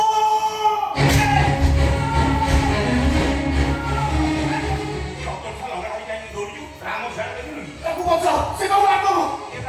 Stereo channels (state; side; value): identical; both; correlation 1.00